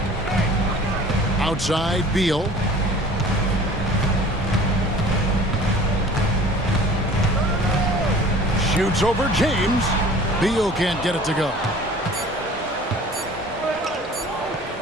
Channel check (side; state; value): both; normal; correlation 0.46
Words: Outside, Beal. Shoots over James. Beal can't get it to go.